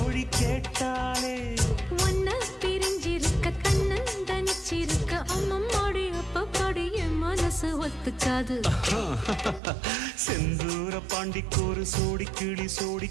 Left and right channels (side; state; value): left; drops out; at 9.6 s